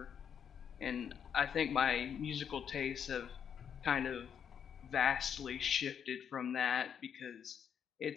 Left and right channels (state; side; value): quieter; right; 8.0 dB